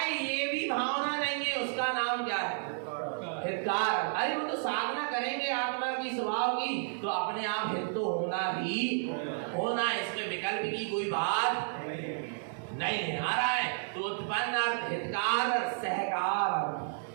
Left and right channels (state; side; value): silent; left; digital silence